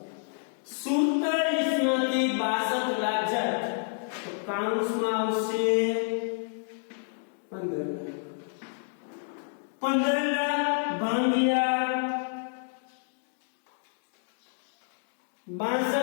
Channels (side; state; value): right; silent; digital silence